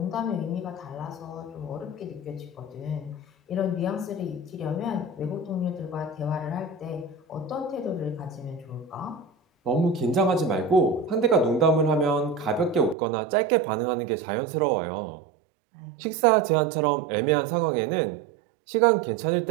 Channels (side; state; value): left; drops out; at 13.0 s